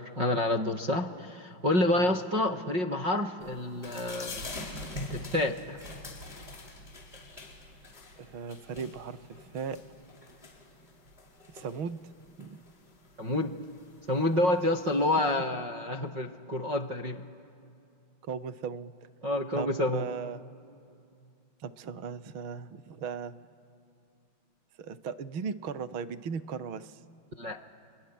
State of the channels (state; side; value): late; left; 5.5 ms